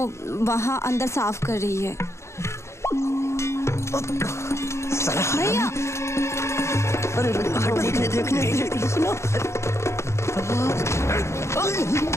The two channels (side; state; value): right; late; 0.13 ms